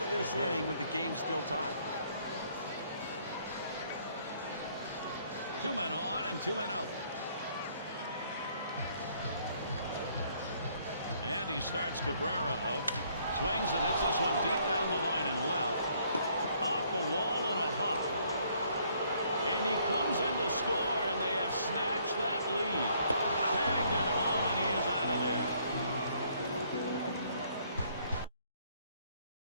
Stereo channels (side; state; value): both; inverted; correlation -0.65